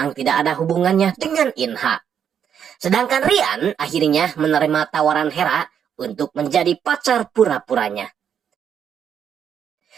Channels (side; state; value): left; quieter; 8.3 dB